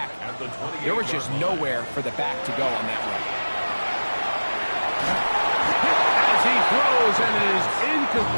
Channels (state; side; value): inverted; both; correlation -1.00